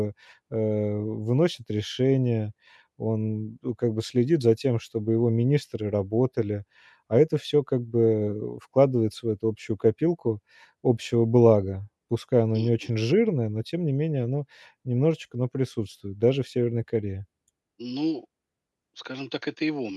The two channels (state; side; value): identical; both; correlation 1.00